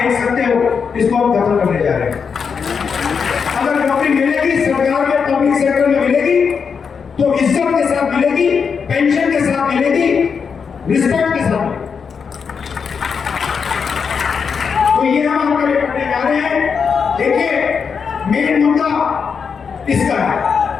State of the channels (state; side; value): quieter; right; 6.1 dB